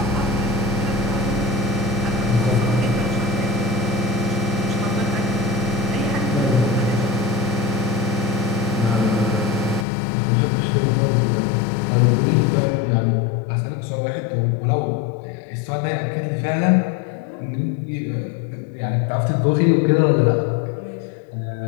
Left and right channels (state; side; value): drops out; right; at 9.9 s